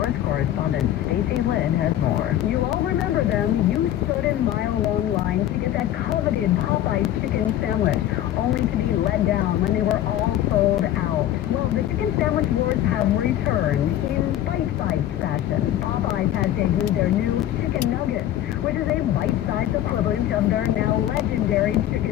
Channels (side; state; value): right; quieter; 12.4 dB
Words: Correspondent Stacey Lynn has more. You all remember them. You stood in mile-long lines to get that coveted Popeyes chicken sandwich, only to be let down when they were all sold out. Well, the Chicken Sandwich Wars have returned in bite-sized fashion. Popeyes has debuted their new Chicken Nuggets, which is a bite-sized equivalent of their now legendary